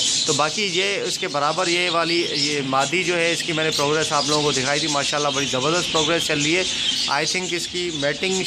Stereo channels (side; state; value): both; identical; correlation 1.00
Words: तो बाकी ये इसके बराबर ये मादी जो है इसकी मैंने प्रोग्रेस आप लोगों को दिखाई थी। माशाल्लाह बड़ी ज़बरदस्त प्रोग्रेस चल रही है। आई थिंक इसकी मैटिंग